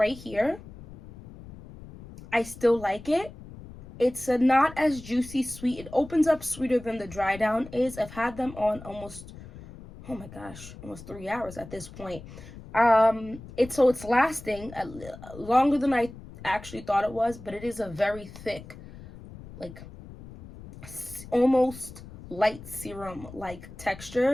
here. I still like it. It's not as juicy sweet. It opens up sweeter than the Dry Down is. I've had them on almost, oh my gosh, almost 3 hours at this point. It's lasting longer than I actually thought it was, but it is a very thick, like almost light serum like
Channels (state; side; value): noise; left; rumble, 16 dB below the sound